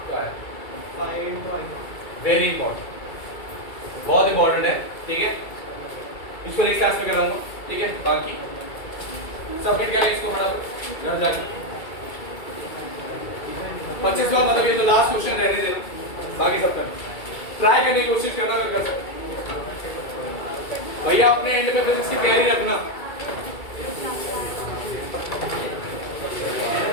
क्या है? वेरी इंपॉर्टेंट, बहुत इंपॉर्टेंट है, ठीक है? इसको नेक्स्ट क्लास में कराऊंगा, ठीक है? बाकी सबमिट कर ले इसको फटाफट घर जाके। 25 का मतलब ये तो लास्ट क्वेश्चन रहने देना, बाकी सब करना, ट्राई करने की कोशिश करना अगर कर सकते। भैया अपने एंड पे फिजिक्स की तैयारी रखना।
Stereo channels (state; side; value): late; right; 2.3 ms